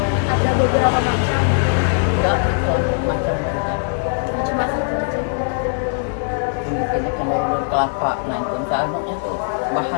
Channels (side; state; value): right; silent; 66 dB below the other